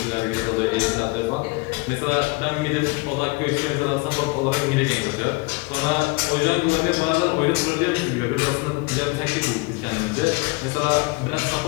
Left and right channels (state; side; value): quieter; right; 26.1 dB